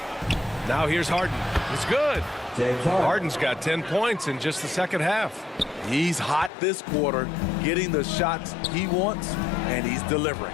Now here's Harden. It's good. James Harden. Harden's got 10 points in just the second half. He's hot this quarter, getting the shots he wants, and he's delivering.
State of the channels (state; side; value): drops out; right; at 6.5 s